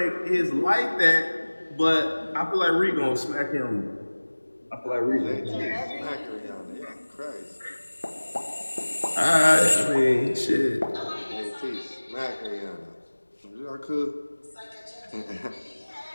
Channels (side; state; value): both; inverted; correlation -1.00